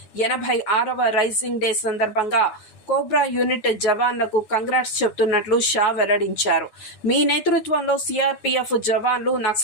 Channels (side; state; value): right; late; 9.5 ms